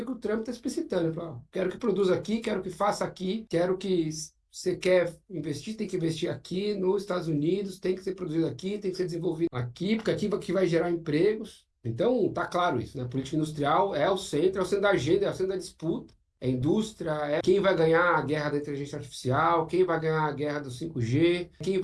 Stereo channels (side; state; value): both; identical; correlation 1.00